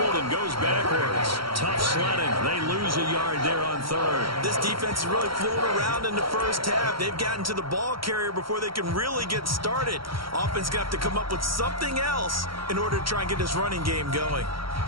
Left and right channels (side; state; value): left; late; 0.74 ms